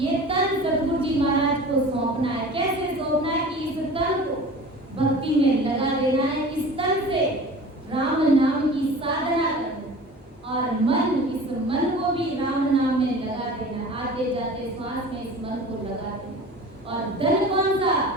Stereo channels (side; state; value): both; normal; correlation 0.40